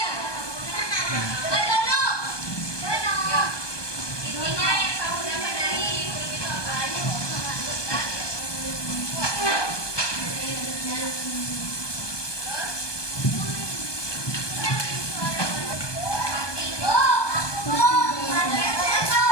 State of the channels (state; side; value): late; right; 1.2 ms